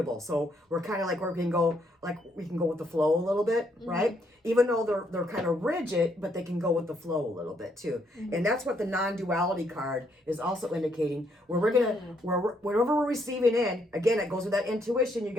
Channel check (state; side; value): normal; both; correlation 0.72